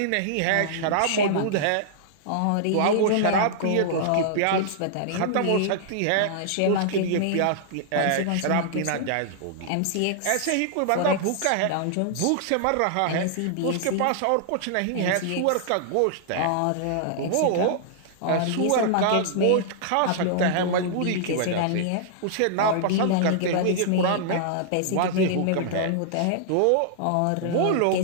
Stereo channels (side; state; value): both; different; correlation -0.01